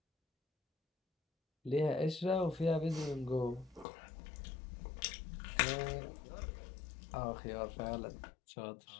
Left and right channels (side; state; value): right; drops out; at 3.9 s